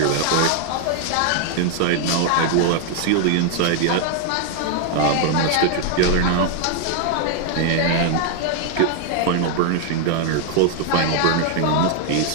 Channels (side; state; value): both; different; correlation 0.00